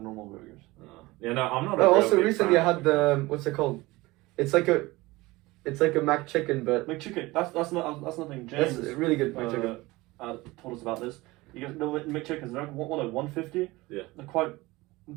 normal burgers. Yeah, no, I'm not. A Oh, real also big recently I fan. had the what's it called? It's like a Mac chicken, but McChicken. That's nothing. that's James really good Mac chicken. told us about this. You guys know McChickens. They're like 150. Yeah. They're quite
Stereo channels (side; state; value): left; quieter; 20.8 dB